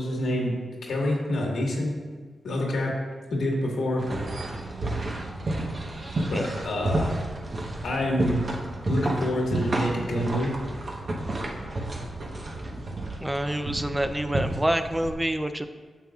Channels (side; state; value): both; normal; correlation 0.88